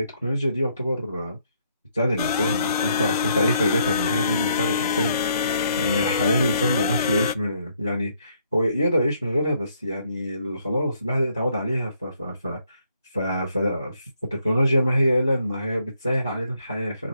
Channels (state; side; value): inverted; both; correlation -0.71